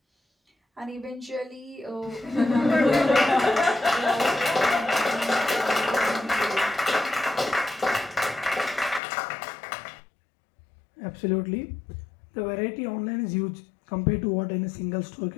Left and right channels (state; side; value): drops out; right; at 9.0 s